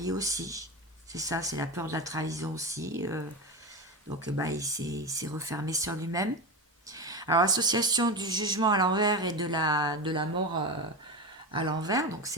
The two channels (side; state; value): both; normal; correlation 0.20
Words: aussi. C'est ça, c'est la peur de la trahison aussi. Donc, bah, il s'est refermé sur lui-même. Alors, association du jugement à l'envers et de la mort à l'envers, donc